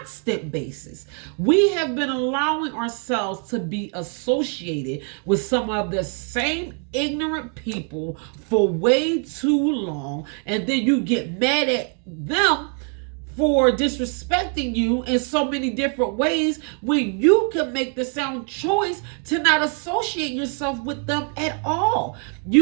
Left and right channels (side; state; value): left; quieter; 39.7 dB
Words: basis. We have been allowing ourselves to be associated with some of the same ignorant people for way too long, and then you get mad at them for disrespecting you in so many different ways, when you can make the sound choice to not associate yourself with them at all.